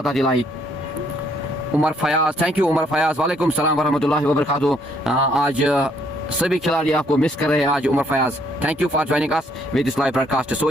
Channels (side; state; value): both; normal; correlation 0.68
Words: दिलाई। उमर फयाज, थैंक यू उमर फयाज वालेकुम सलाम वरहमतुल्लाहि वबरकातुहू। आज सभी खिलाड़ी आपको मिस कर रहे हैं आज Umar Fayaz. Thank you for joining us with this live broadcast. So